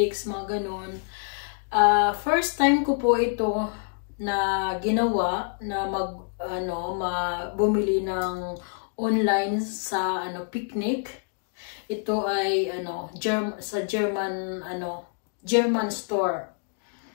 mga ganun. First time ko po ito na ginawa na bumili ng online sa picnic. Ito ay sa German store.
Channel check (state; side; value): silent; right; 59 dB below the other